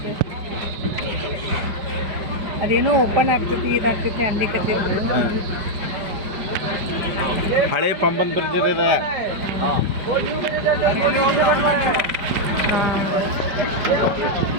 ಅದೇನೋ ಓಪನ್ ಆಗ್ತೈತಿ ಇದಾಗ್ತೈತಿ ಅನ್ಲಿಕತ್ತಿದ್ರು. ಹಳೆ ಪಂಬನ್ ಬ್ರಿಡ್ಜ್ ಇದೆ.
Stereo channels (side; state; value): left; late; 5.1 ms